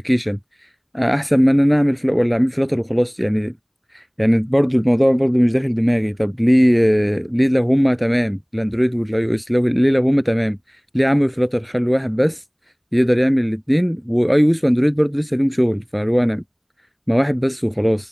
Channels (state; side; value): identical; both; correlation 1.00